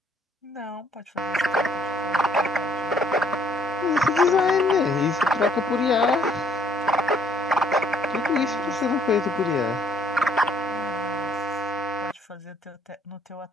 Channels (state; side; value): normal; both; correlation 0.64